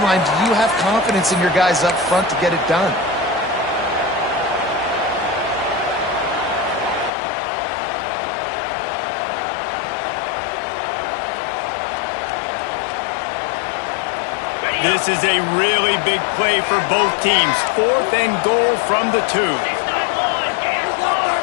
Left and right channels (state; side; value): drops out; right; at 7.1 s